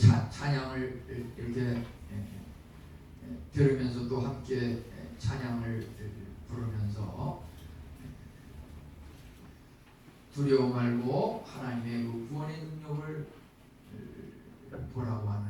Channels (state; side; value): identical; both; correlation 1.00